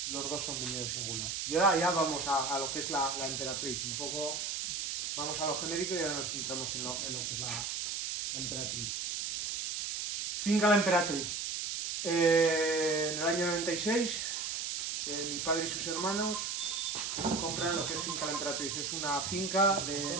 los dos son viñedo singular. Y ahora ya vamos a lo que es la emperatriz, un poco vamos a lo genérico y ahora nos centramos en lo que es la emperatriz. Finca La Emperatriz. En el año 96, mi padre y sus hermanos compran lo que es Finca La Emperatriz. Es una finca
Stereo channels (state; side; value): noise; right; hiss, 2 dB below the sound